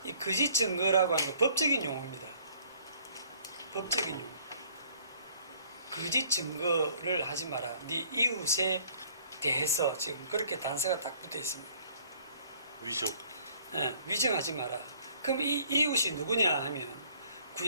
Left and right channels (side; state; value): both; inverted; correlation -0.58